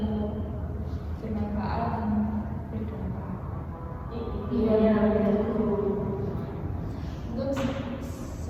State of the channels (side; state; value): both; identical; correlation 1.00